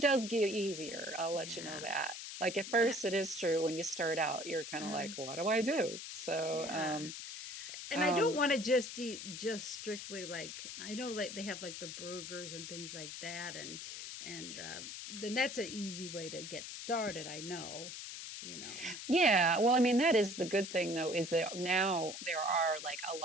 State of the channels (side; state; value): left; noise; hiss, 8 dB below the sound